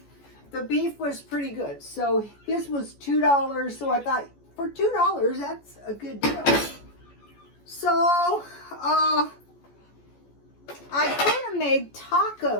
The beef was pretty good. So this was $2. So I thought, for $2, that's a good deal. So I could have made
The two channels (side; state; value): right; late; 14 ms